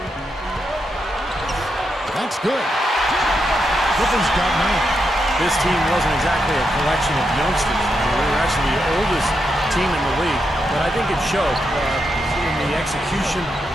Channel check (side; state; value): both; normal; correlation 0.84